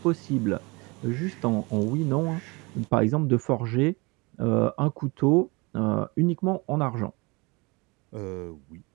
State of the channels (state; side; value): quieter; left; 26.7 dB